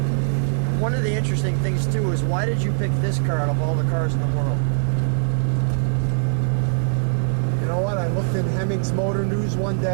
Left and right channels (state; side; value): silent; left; digital silence